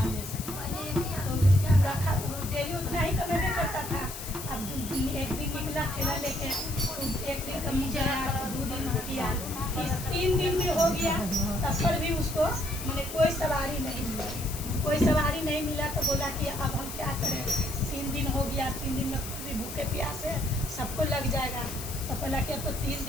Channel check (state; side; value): noise; left; hiss, 9 dB below the sound